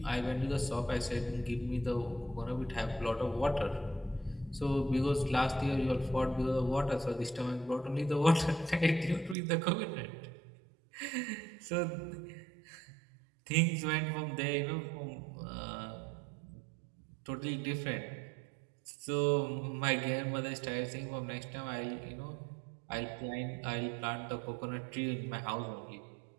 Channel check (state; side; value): drops out; left; at 9.3 s